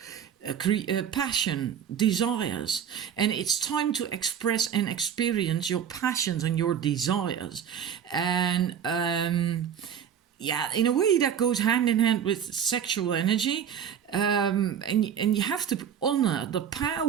passion, desires. And it's time to express and experience your passions and your desires. And yeah, in a way that goes hand in hand with sexual energy. And you have to honor the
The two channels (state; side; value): quieter; left; 8.5 dB